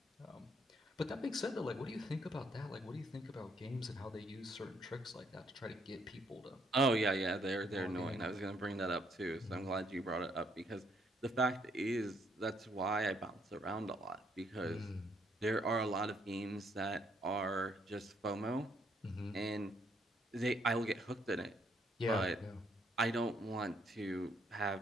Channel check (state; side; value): normal; both; correlation 0.70